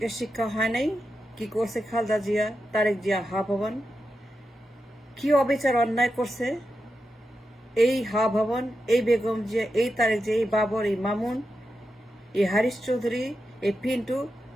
শিক্ষা হয় নাই। কি করছে খালদা জিয়া, তারেক জিয়া, হা ভবন, কি অবিচার অন্যায় করছে এই হা ভবন, এই বেগম জিয়া, এই তারেক জিয়া, এই বাবর, এই মামুন, এই হারিস চৌধুরী, এই পিন্টু,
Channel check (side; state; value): both; normal; correlation 0.89